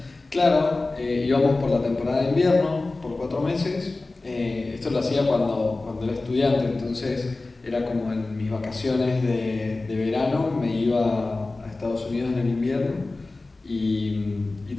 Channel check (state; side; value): quieter; right; 3.3 dB